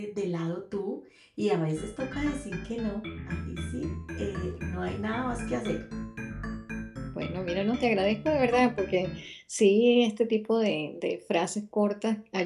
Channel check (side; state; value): both; identical; correlation 1.00